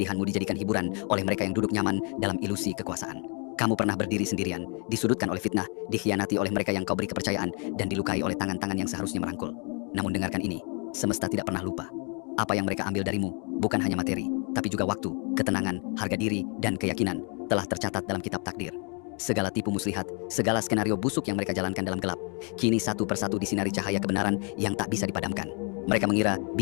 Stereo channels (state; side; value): quieter; right; 36.8 dB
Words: dijadikan hiburan oleh mereka yang duduk nyaman dalam ilusi kekuasaan. Kamu pernah berdiri sendirian, disudutkan oleh fitnah, dikhianati oleh mereka yang kau beri kepercayaan, dan dilukai oleh tangan-tangan yang seharusnya merangkul. Namun dengarkan ini, semesta tidak pernah lupa. Apa yang mereka ambil darimu, bukan hanya materi, tapi juga waktu, ketenangan, harga diri, dan keyakinan, telah tercatat dalam kitab takdir. Segala tipu muslihat, segala skenario busuk yang mereka jalankan dalam gelap, kini satu persatu disinari cahaya kebenaran yang tak bisa dipadamkan. Mereka mengira